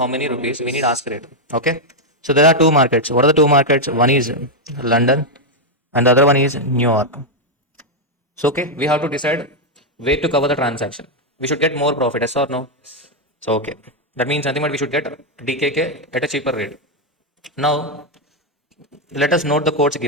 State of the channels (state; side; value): normal; both; correlation 0.01